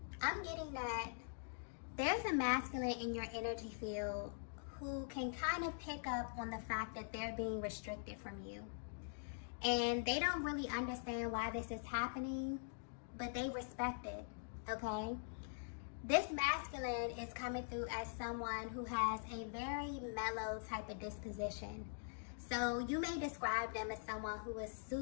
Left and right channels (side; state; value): right; silent; digital silence